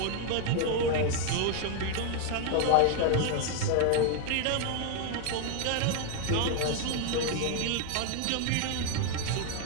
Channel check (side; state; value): both; different; correlation 0.01